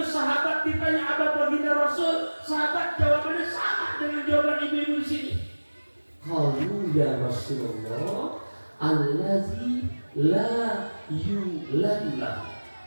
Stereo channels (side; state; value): both; inverted; correlation -1.00